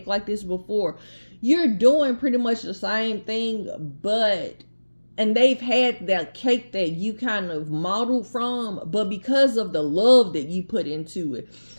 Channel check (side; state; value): both; inverted; correlation -1.00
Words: like this before. You're doing pretty much the same thing, and they've had that cake that you kind of modeled from, but because of the love that you put into it,